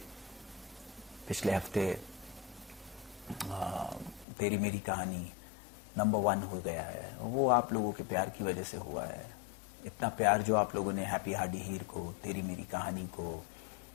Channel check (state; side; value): drops out; right; at 4.2 s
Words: पिछले हफ्ते तेरी मेरी कहानी नंबर 1 हो गया है। वो आप लोगों के प्यार की वजह से हुआ है। इतना प्यार जो आप लोगों ने हैप्पी हार्डी हीर को, तेरी मेरी कहानी को,